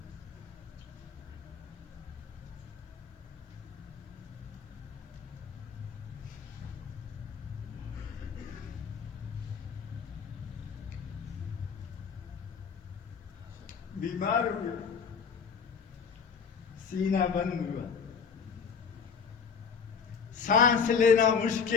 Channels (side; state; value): right; quieter; 6.2 dB